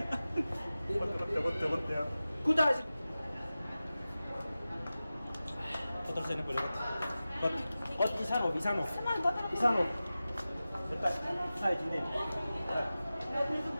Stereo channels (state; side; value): inverted; both; correlation -0.95